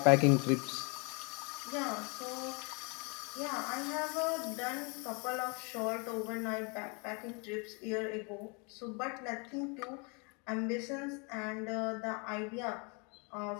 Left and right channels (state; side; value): quieter; right; 32.8 dB